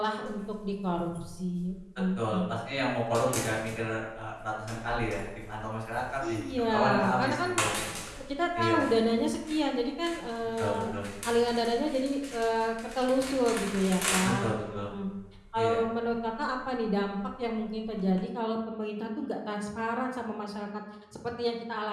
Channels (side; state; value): both; identical; correlation 1.00